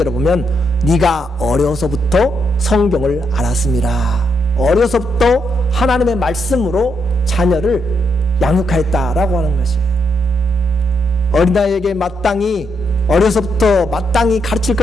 보면 네가 어려서부터 성경을 알았습니다. 어려서부터 하나님의 말씀으로 자녀를 양육하였다라고 하는 것이에요. 어린아이에게 어려서부터 마땅히 가르칠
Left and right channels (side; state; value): both; normal; correlation 0.79